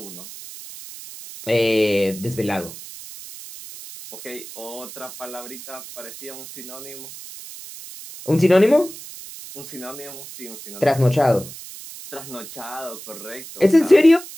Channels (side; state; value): right; noise; hiss, 14 dB below the sound